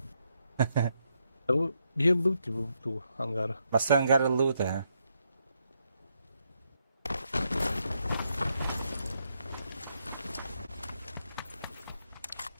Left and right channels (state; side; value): inverted; both; correlation -0.79